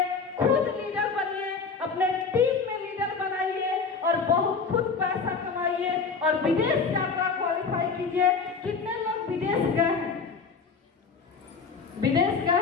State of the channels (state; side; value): quieter; right; 5.1 dB